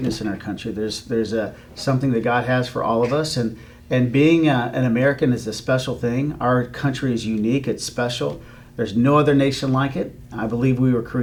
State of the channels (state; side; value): identical; both; correlation 1.00